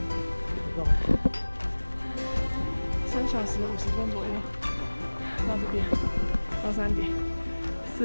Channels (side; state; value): both; inverted; correlation -1.00